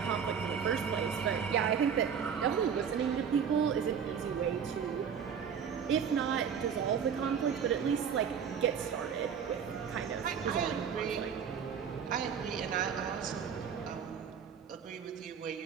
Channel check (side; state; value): left; quieter; 7.3 dB